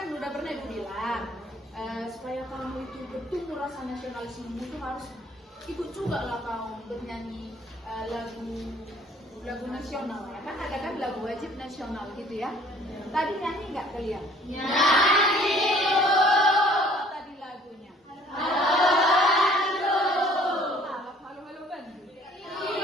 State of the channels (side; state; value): both; normal; correlation 0.55